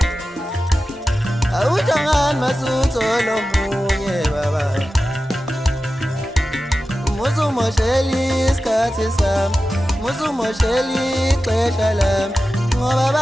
awuhlangani masutho lomunye baba. Musumosheli isikhathi sami, musumosheli ixesha lami, ngoba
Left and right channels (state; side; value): normal; both; correlation 0.93